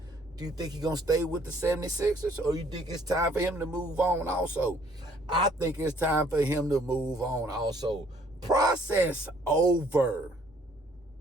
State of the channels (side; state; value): both; normal; correlation 0.61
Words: Do you think he's going to stay with the 76ers, or you think it's time for him to move on also? I think it's time for him to move on also. Process over.